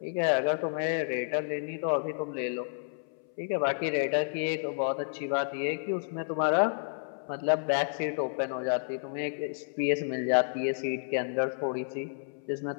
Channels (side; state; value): right; silent; 57 dB below the other